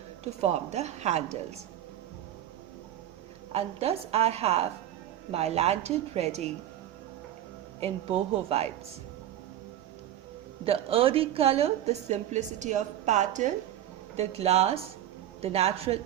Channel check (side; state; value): left; quieter; 11.9 dB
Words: to form the handles. And thus I have my lantern ready in boho vibes. The earthy color, the simplicity of pattern, the glass, the natural